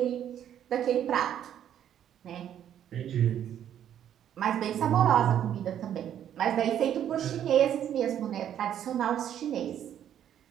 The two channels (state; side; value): quieter; left; 10.1 dB